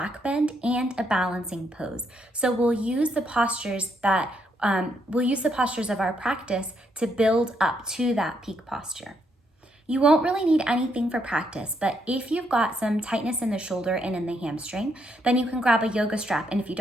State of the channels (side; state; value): both; normal; correlation 0.76